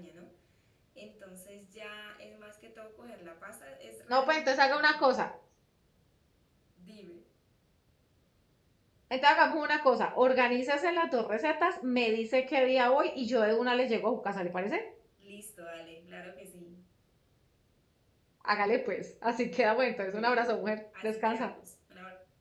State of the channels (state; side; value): identical; both; correlation 1.00